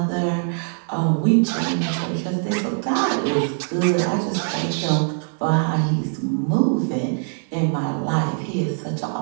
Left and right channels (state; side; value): silent; left; 56 dB below the other